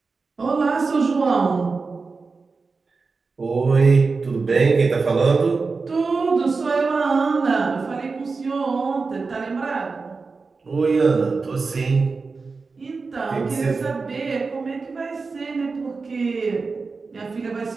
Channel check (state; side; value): quieter; left; 4.3 dB